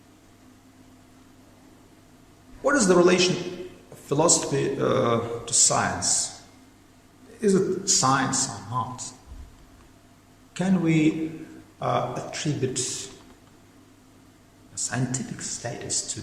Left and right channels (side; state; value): both; identical; correlation 1.00